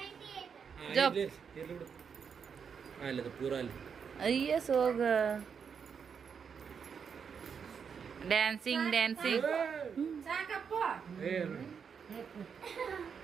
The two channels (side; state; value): left; quieter; 6.6 dB